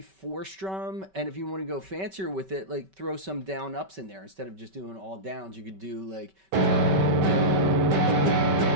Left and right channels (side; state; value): left; late; 5.2 ms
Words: 4-strum, and if you want to go fancier with it, like throw some down ups in there instead of just doing all downs. You could do like